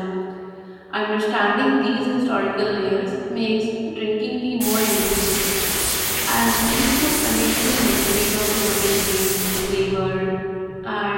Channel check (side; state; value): both; identical; correlation 1.00